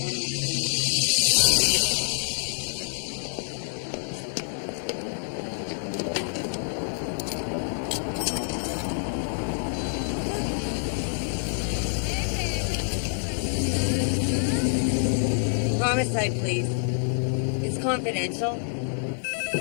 any of Homicide, please. It's confidential.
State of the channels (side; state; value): right; silent; digital silence